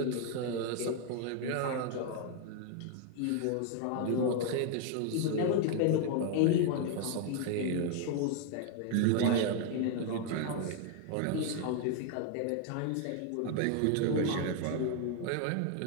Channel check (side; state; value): both; different; correlation 0.00